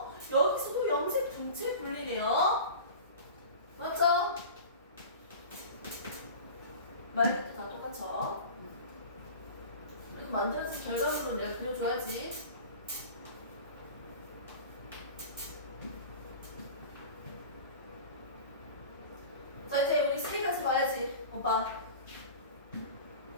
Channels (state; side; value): inverted; both; correlation -0.36